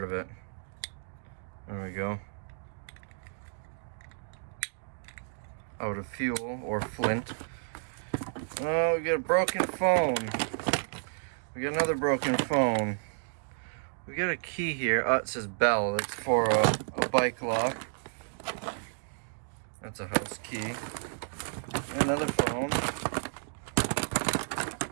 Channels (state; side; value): silent; left; digital silence